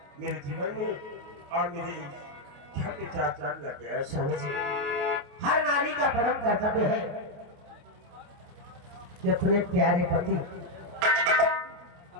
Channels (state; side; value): late; left; 28 ms